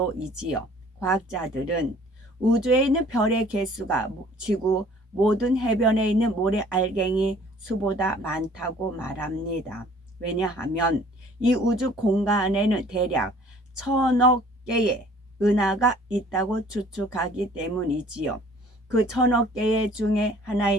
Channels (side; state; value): both; normal; correlation 0.54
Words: 과학자들은 우주에 있는 별의 개수가 지구 모든 해변에 있는 모래 알갱이 수보다 많다고 말합니다. 왜냐하면 이 우주 공간에는 대략 1000억 개의 은하가 있다고 추측하기 때문이지요. 그 1000억 개 중에